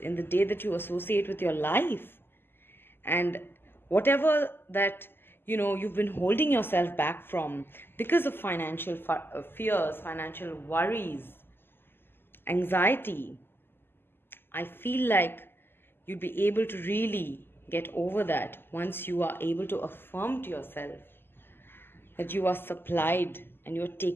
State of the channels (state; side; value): late; right; 0.10 ms